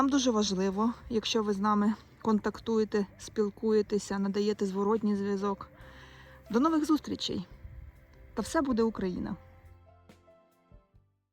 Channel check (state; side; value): identical; both; correlation 1.00